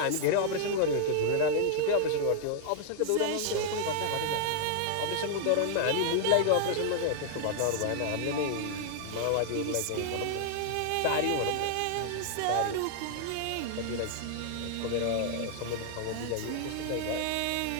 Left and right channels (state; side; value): different; both; correlation -0.01